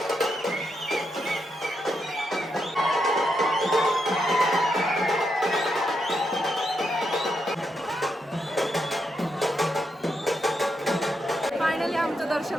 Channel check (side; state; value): both; normal; correlation 0.82